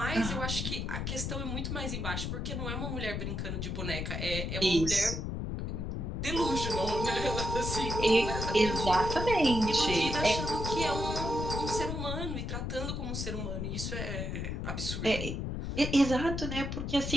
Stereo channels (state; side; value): noise; left; rumble, 3 dB below the sound